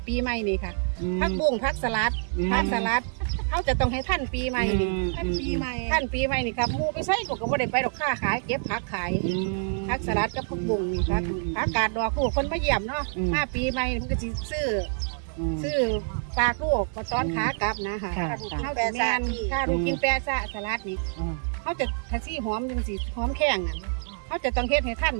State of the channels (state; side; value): silent; left; 55 dB below the other